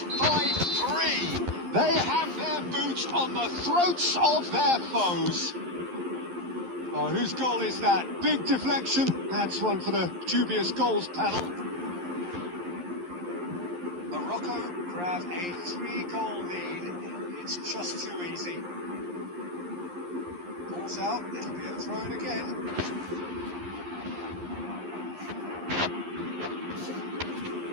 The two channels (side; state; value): left; late; 11 ms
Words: by 3. They have their boots on the throats of their foes. Oh, whose goal is that? Big deflection. That's one for the dubious goals panel. Morocco grab a 3-goal lead. It's just too easy. Ball's out. It'll be a throw again.